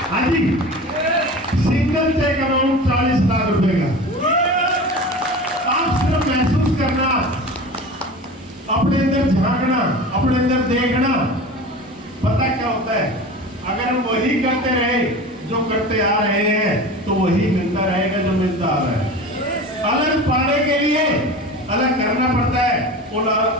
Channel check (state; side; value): normal; both; correlation 0.34